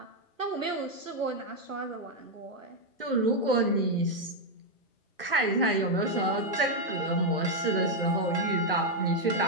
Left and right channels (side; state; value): both; normal; correlation 0.01